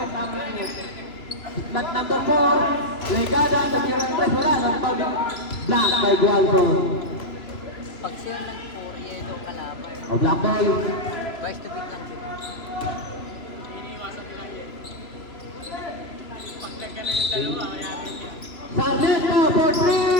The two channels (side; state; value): right; late; 3.0 ms